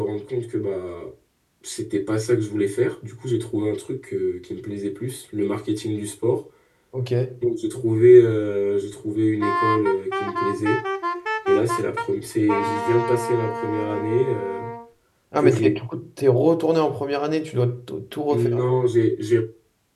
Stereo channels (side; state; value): both; identical; correlation 1.00